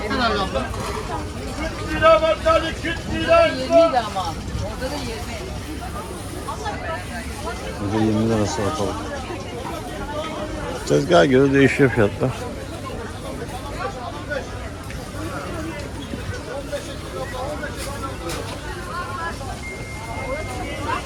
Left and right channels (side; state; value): both; identical; correlation 1.00